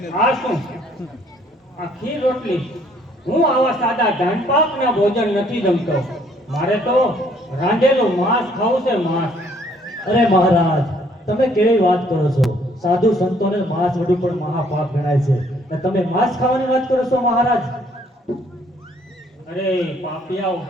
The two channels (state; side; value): normal; both; correlation 0.63